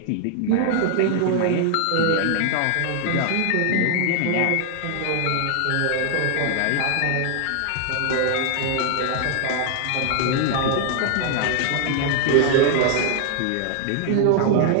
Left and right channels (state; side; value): different; both; correlation 0.00